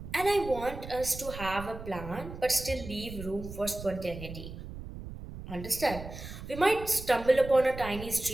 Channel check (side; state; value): right; noise; rumble, 11 dB below the sound